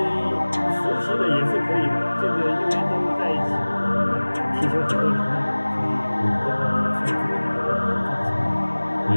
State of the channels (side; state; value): both; inverted; correlation -1.00